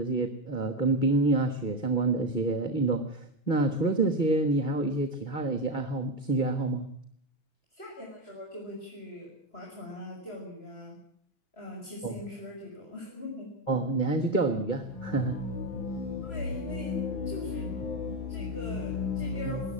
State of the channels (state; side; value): late; right; 6.1 ms